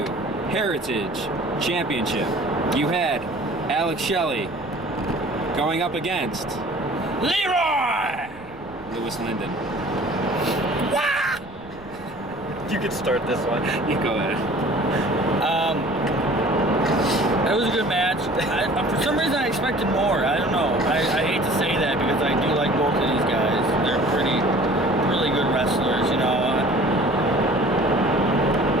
Heritage Championship, you had Alex Shelley going up against Leroy! Lewis Linden. You could start this one. You go ahead. It was a good match. For some reason, I expected more. I don't know. I hate to say that because I do like both of these guys. They're really good wrestlers, you know. I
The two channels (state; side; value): noise; right; rumble, 21 dB below the sound